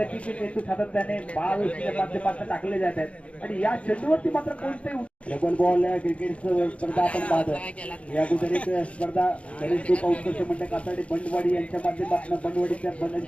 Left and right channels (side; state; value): right; late; 0.063 ms